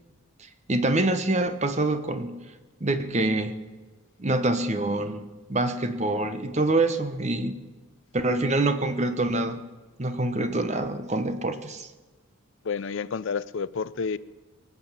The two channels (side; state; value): both; normal; correlation 0.42